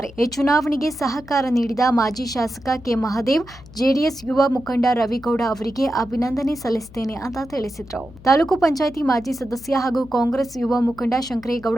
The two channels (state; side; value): noise; left; hum, 20 dB below the sound